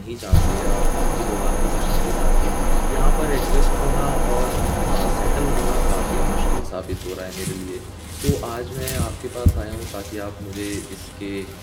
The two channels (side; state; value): both; identical; correlation 1.00